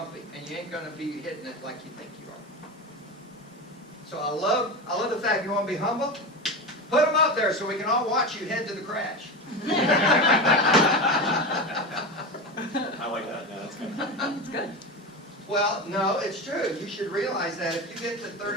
and you ain't going to be hitting it like you think you are. So I love the fact you want to be humble. Put them up there so we can all watch you head to the crash. I like that. Yeah, that's good. That's good. Well, no, it's true. You should realize that if you get to 30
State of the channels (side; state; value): both; normal; correlation 0.23